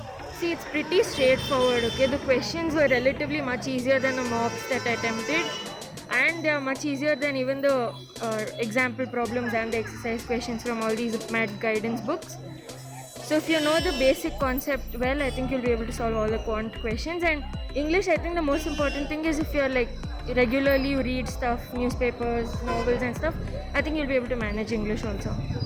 See, it's pretty straightforward, okay? The questions were relatively much easier than the mocks that I attempted, and they are much easier than even the example problems and the exercise questions from all these math guidance books. So if you know the basic concept well, I think you'll be able to solve all the quant questions. And English, I think the most important thing is if you're like regularly you read stuff, newspapers, novels and stuff, I think you'll be able to manage English also.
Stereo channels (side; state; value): both; identical; correlation 1.00